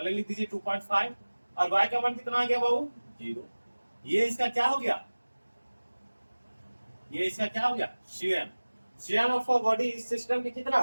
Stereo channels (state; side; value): inverted; both; correlation -1.00